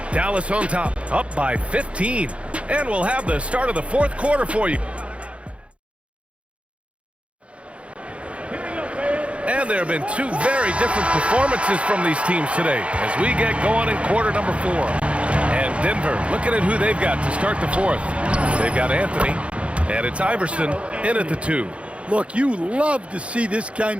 Dallas on top, up by 15. And we'll have the start of the fourth quarter for you. And there have been 2 very different performances from these teams today as we get going in quarter number 4. And Denver, looking at who they've got to start the fourth. They've got Anthony, and it's Iverson in at the 2. Look, you love to see this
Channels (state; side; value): late; left; 0.061 ms